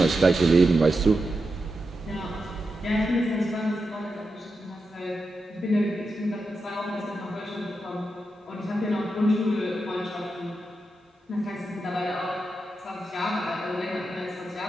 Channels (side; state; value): both; normal; correlation 0.88